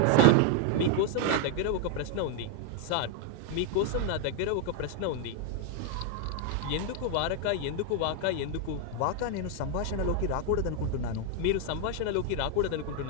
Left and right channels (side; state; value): both; different; correlation 0.01